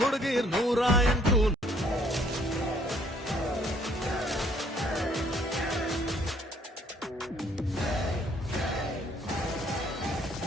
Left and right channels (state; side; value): normal; both; correlation 0.63